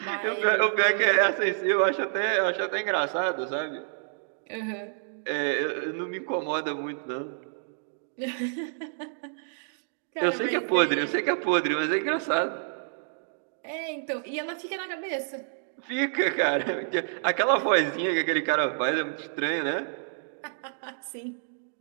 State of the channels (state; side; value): silent; left; digital silence